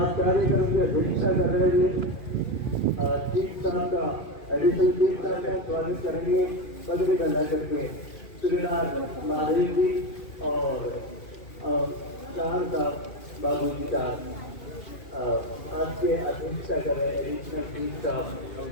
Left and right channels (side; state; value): right; late; 2.4 ms